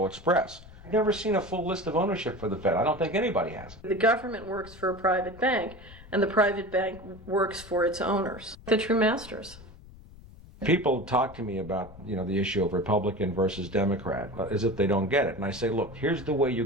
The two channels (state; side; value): noise; left; rumble, 19 dB below the sound